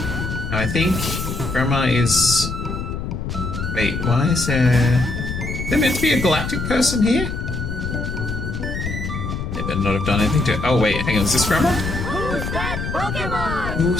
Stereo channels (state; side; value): noise; left; rumble, 5 dB below the sound